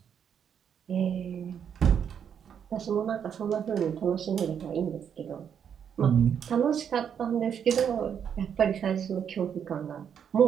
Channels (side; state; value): left; quieter; 8.1 dB